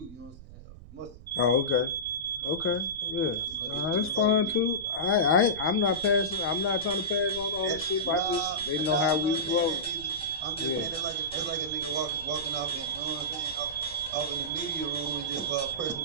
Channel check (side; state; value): right; noise; rumble, 17 dB below the sound